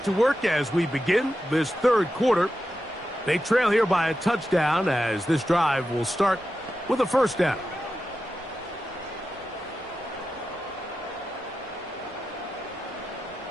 to work as we begin this third quarter. They trail here by a touchdown as this drive will start with a first down.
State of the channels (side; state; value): both; normal; correlation 0.90